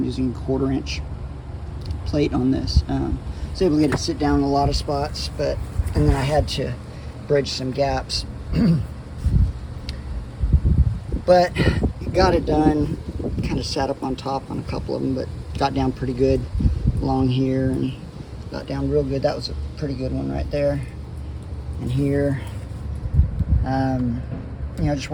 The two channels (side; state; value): both; identical; correlation 1.00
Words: using 1/4-inch plate on this. I was able to get it sit down in a lot of spots, and then I had to bridge some gaps. But got it done. Kind of sat up on top on a couple of them, but got down pretty good along here and got down real good. That was a pretty good one right there. And here, you know, just